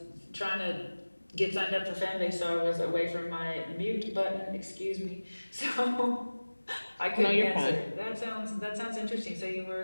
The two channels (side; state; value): both; inverted; correlation -1.00